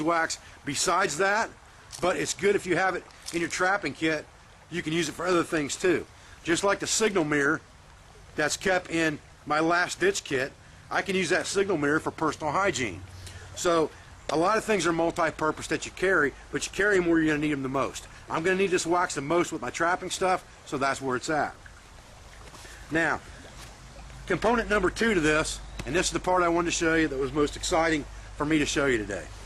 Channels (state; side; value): identical; both; correlation 1.00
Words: besides that, but it's good if you have it in your trapping kit. You can use it for other things too. Just like the signal mirror that's kept in my last ditch kit, I can use that signal mirror for personal hygiene. So a lot of things are multi-purpose that you carry, but you carry them where you're going to need them the most. I'm going to need this wax the most with my trapping stuff, so that's where it's at. Now, component number 2 to this, and this is the part I wanted to show you that was most exciting for me to show you today.